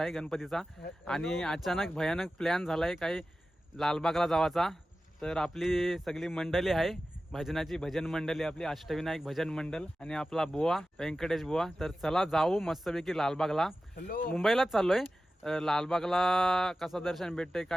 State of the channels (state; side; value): normal; both; correlation 0.94